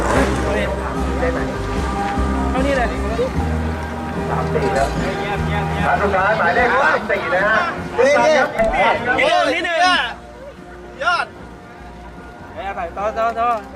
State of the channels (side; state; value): both; identical; correlation 1.00